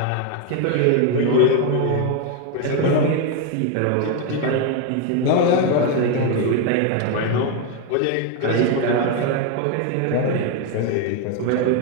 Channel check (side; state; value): both; different; correlation 0.01